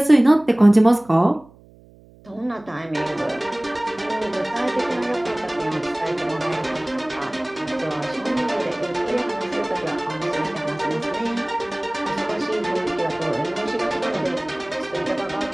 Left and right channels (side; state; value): right; noise; hum, 25 dB below the sound